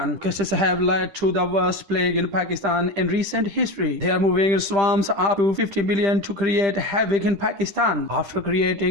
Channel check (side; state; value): left; late; 10 ms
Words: Locusts have led to the worst plague in Pakistan in recent history. They are moving in swarms up to 50 million to create havoc in Pakistan. After